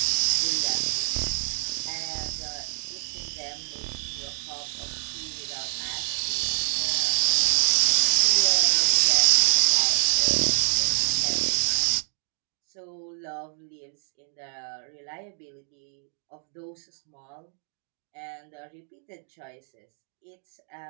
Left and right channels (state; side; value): silent; left; digital silence